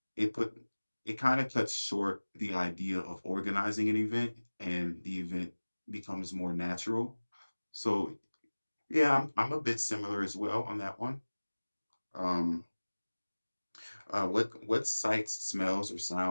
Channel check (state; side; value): inverted; both; correlation -1.00